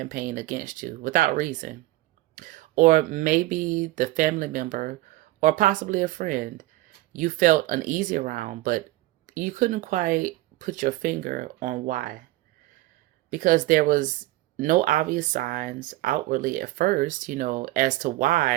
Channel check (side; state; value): left; quieter; 17.7 dB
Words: against you without reason. Or maybe the family member or possibly a friend you felt uneasy around, but you couldn't quite put your finger on why. Because there was no obvious signs outwardly at first, as to